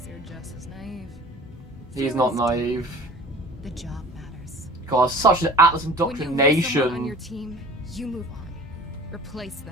you're just as naive. He's not naive. The job matters. God, such an Atlas When you lose someone on your indoctrination. team, you move on. Replace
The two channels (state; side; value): normal; both; correlation 0.44